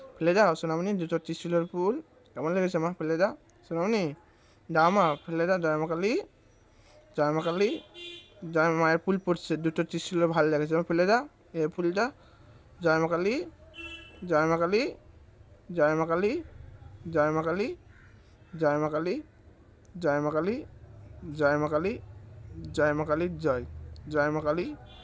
ফেলে দাও সোনামণি, দুটো ত্রিশূলের ফুল কেমন লেগেছে মা? ফেলে দাও সোনামণি, দাও মা ফেলে দাও। জয় মা কালী, জয় মা কালী, জয় মায়ের ফুল পড়ছে, দুটো ত্রিশূলের ভালো লেগেছে, ফেলে দাও এই ফুলটা। জয় মা কালী, জয় মা কালী, জয় মা কালী, জয় মা কালী, জয় মা কালী, জয় মা কালী, জয় মা কালী, জয় মা কালী, জয় জয় মা কালী,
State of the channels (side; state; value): both; identical; correlation 1.00